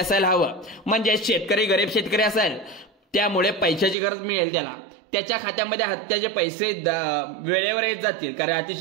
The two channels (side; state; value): left; drops out; at 4.0 s